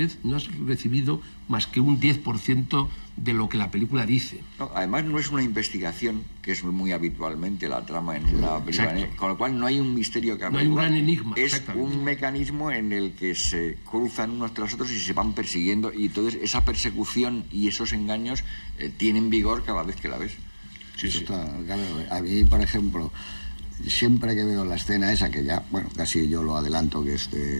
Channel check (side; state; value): both; inverted; correlation -1.00